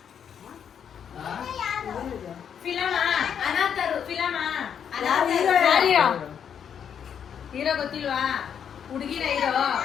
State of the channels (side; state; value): right; quieter; 8.1 dB